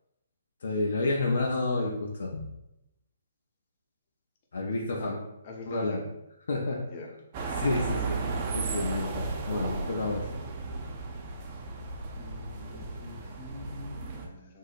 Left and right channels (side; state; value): both; inverted; correlation -0.70